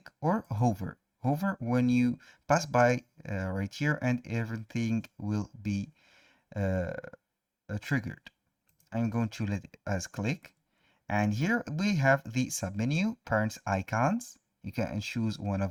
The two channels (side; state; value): both; identical; correlation 1.00